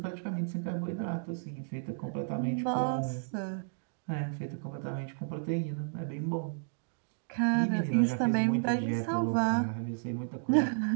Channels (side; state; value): left; silent; digital silence